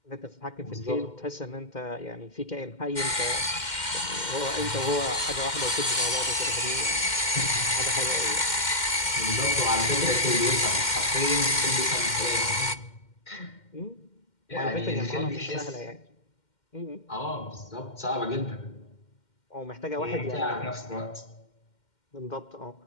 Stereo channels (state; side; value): late; right; 2.1 ms